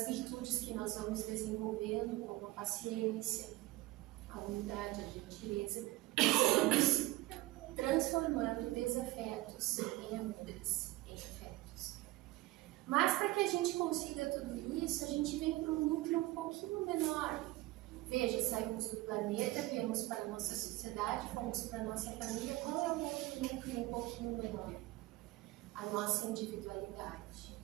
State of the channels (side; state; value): left; quieter; 18.9 dB